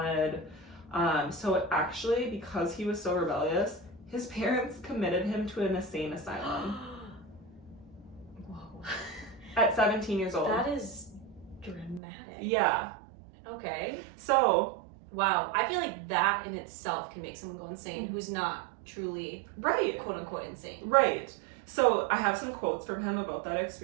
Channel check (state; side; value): drops out; left; at 12.0 s